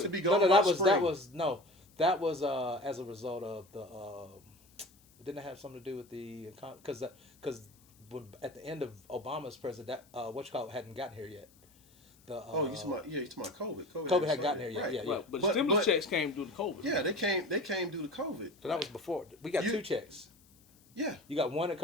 That was as a result of the. Didn't it have something to do with the because at the end of Obama's president, hadn't gotten here yet. You talking about COVID. COVID hadn't gotten here yet. Right. Yeah. But the stimulus checks came due to COVID. Yeah, they came due to COVID. So that was before. We got two checks. Yeah. You got one at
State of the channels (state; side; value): noise; left; hiss, 29 dB below the sound